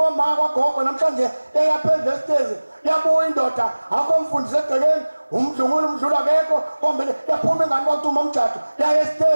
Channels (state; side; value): inverted; both; correlation -1.00